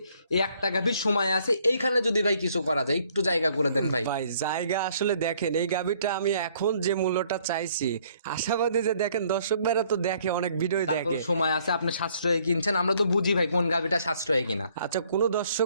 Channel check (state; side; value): inverted; both; correlation -0.63